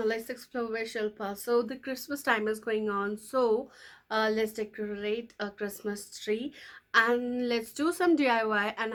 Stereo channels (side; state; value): both; identical; correlation 1.00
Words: Let's explore where Shilpa. So the Christmas time is going on, so let's decorate a Christmas tree and let's do some DIY. And